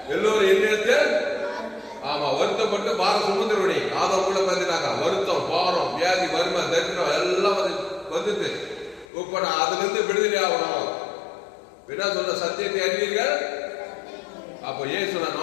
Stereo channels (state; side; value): drops out; right; at 9.1 s